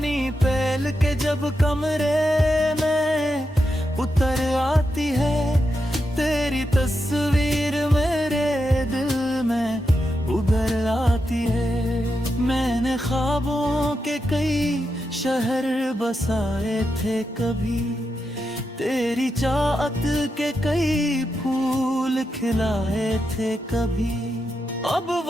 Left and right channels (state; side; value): normal; both; correlation 0.86